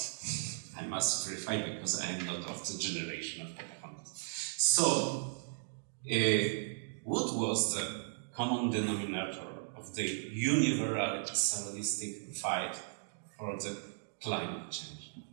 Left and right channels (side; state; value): left; silent; digital silence